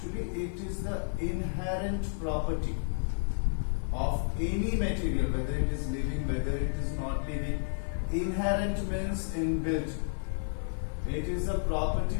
it is the inherent property of any material, whether it is living, whether it is not living. Inherent means inbuilt. It is a property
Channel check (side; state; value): right; silent; digital silence